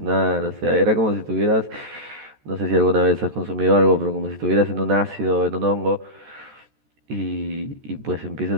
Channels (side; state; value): left; late; 14 ms